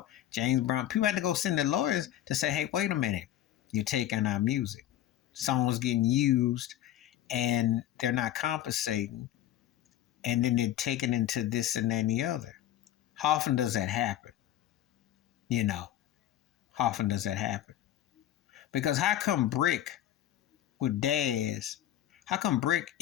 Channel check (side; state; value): right; quieter; 12.4 dB